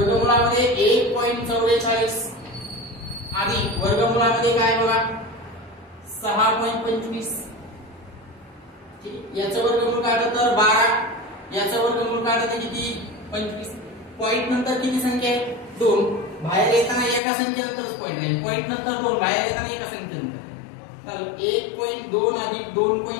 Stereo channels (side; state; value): right; drops out; at 17.2 s